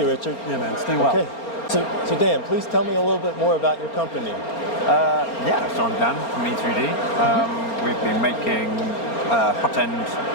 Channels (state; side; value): late; right; 4.3 ms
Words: Ken. Richard. Yeah, man. Stay well. Okay. So Dan, please tell me a little bit more about your company. So I'm Dan from E3D. We've been making hot end